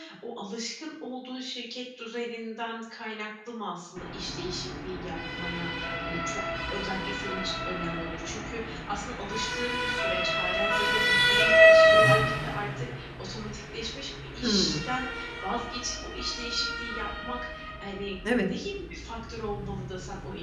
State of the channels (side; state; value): both; identical; correlation 1.00